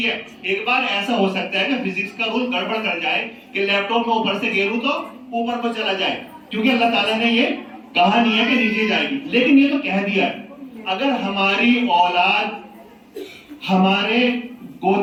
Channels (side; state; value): both; identical; correlation 1.00